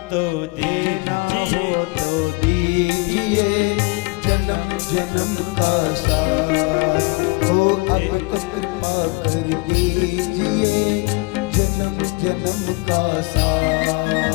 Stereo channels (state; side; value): quieter; right; 27.7 dB